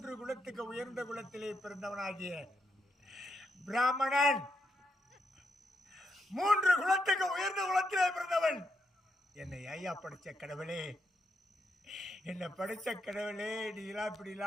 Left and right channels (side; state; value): both; normal; correlation 0.80